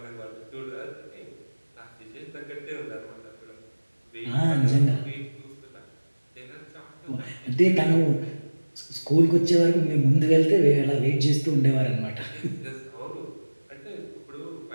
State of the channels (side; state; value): both; inverted; correlation -1.00